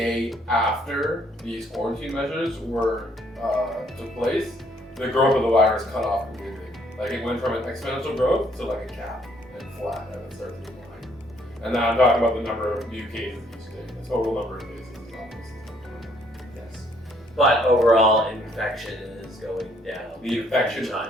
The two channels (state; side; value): normal; both; correlation 0.66